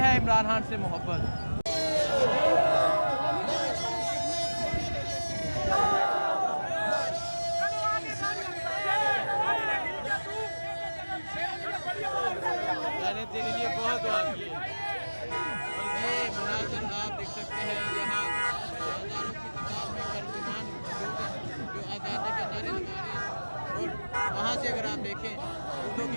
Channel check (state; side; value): inverted; both; correlation -1.00